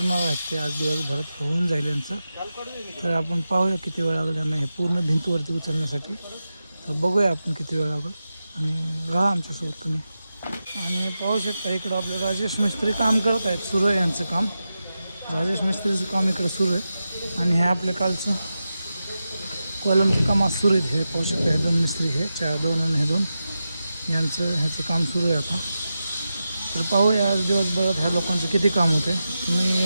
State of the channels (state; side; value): inverted; both; correlation -0.91